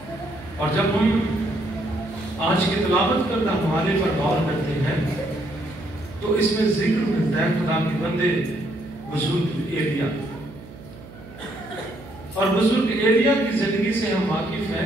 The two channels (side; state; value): right; noise; hum, 18 dB below the sound